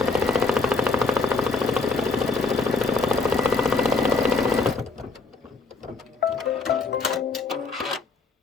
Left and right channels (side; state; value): right; quieter; 4.0 dB